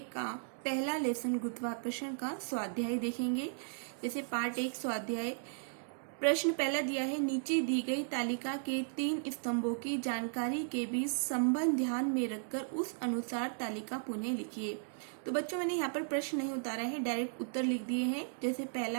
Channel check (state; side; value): silent; left; digital silence